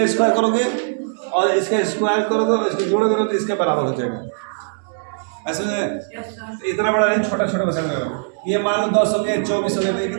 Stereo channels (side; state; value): left; silent; digital silence